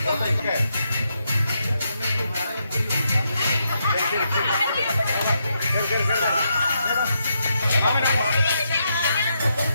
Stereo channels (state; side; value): inverted; both; correlation -0.80